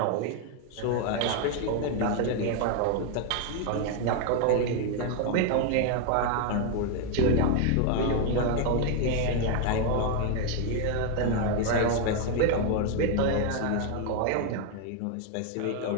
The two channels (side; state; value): both; different; correlation 0.00